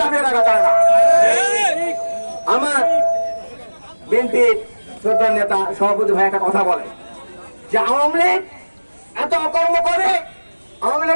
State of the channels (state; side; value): inverted; both; correlation -1.00